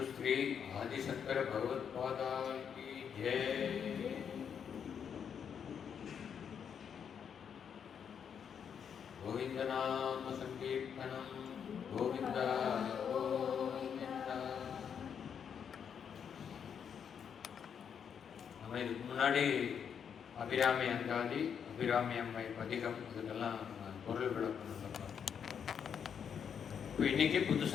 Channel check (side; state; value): right; quieter; 7.6 dB